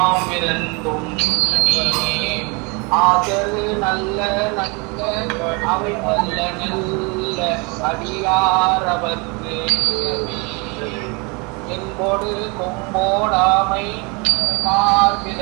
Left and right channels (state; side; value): quieter; left; 30.0 dB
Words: ஆதரு நல்ல நல்ல அவை நல்ல நல்ல அடியாரவர்க்கு என்போடு கொம்போடாமை